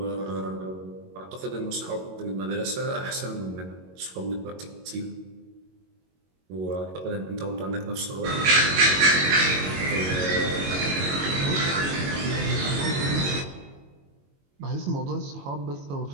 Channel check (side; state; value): left; late; 22 ms